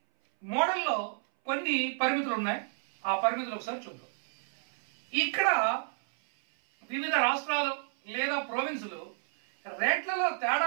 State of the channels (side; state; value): left; silent; 57 dB below the other